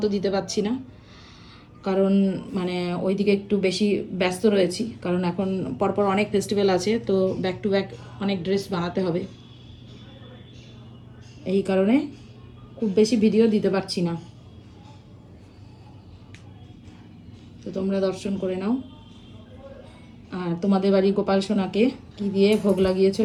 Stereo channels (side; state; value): both; identical; correlation 1.00